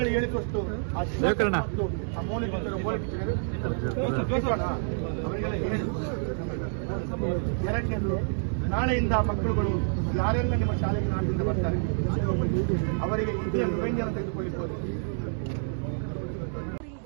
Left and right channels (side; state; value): left; silent; digital silence